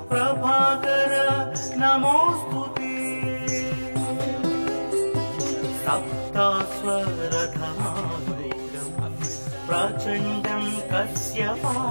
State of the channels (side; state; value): both; inverted; correlation -1.00